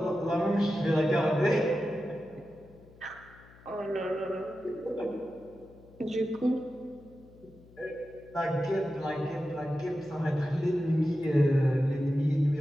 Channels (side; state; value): left; noise; hum, 24 dB below the sound